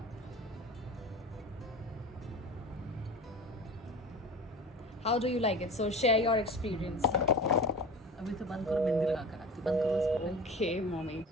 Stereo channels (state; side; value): normal; both; correlation 0.36